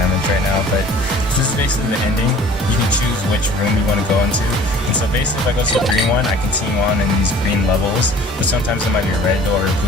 right now, but this is basically the ending. You can choose which room you want to go into. And so basically if I go to the green one, I continue on in these green levels, but sometimes it might be a red door, a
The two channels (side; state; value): both; normal; correlation 0.49